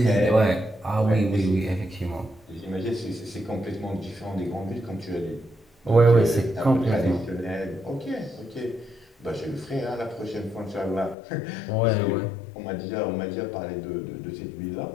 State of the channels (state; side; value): drops out; right; at 11.2 s